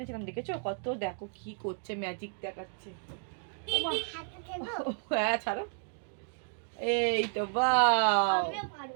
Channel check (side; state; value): left; silent; 56 dB below the other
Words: দেখেছো কত, দেখো কি করছে, ম্যাজিক দেখাচ্ছে। হ্যাঁ ছাড়ো, এই তো বাহ,